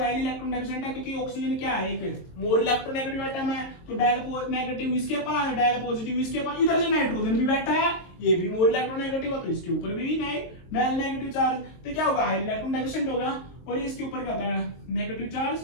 इलेक्ट्रॉन डेफिशिएंट है, क्योंकि ऑक्सीजन क्या है? एक मोर इलेक्ट्रोनेगेटिव एटम है, तो डायल नेगेटिव इसके पास, डायल पॉजिटिव इसके पास, इधर से नाइट्रोजन भी बैठा है, ये भी मोर इलेक्ट्रोनेगेटिव है, तो इसके ऊपर भी नहीं डायल नेगेटिव चार्ज, तो क्या होगा? हाई इलेक्ट्रॉन डेफिशिएंट होगा। और ये इसके ऊपर क्या होता है? नेगेटिव चार्ज,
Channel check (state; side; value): late; right; 22 ms